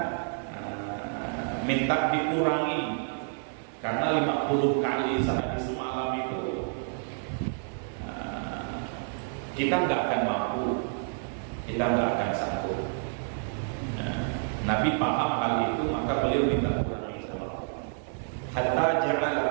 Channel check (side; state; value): left; silent; digital silence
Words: minta dikurangi, karena 50 kali sehari semalam itu kita nggak akan mampu, kita nggak akan sanggup. Nabi paham hal itu, maka beliau minta kurangi sama Allah. Hatta